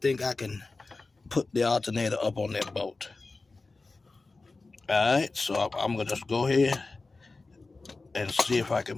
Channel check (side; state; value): right; quieter; 3.6 dB